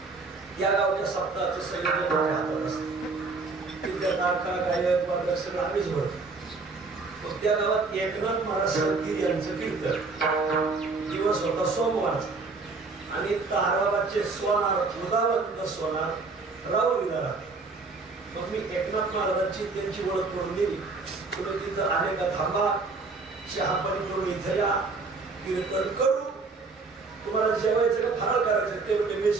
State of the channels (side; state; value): left; quieter; 4.0 dB